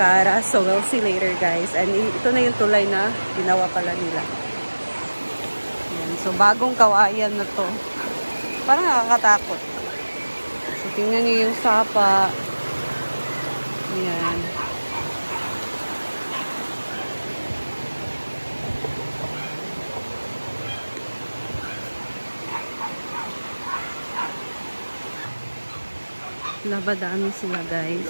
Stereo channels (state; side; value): inverted; both; correlation -1.00